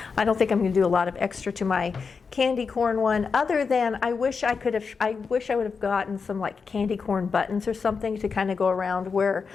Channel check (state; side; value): quieter; right; 5.3 dB